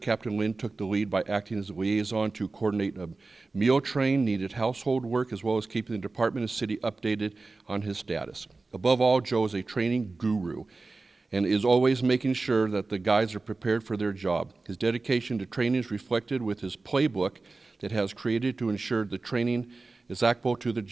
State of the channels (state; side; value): quieter; left; 3.6 dB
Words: Lynn took the lead by acting as a liaison to coordinate a meal train, needed household work, as well as keeping the department and city updated on his status. Above all, Joe is a training guru and is always making sure that the guys are prepared for their job. His dedication to training is reflected with his playbook that has created to ensure the training is applicable to the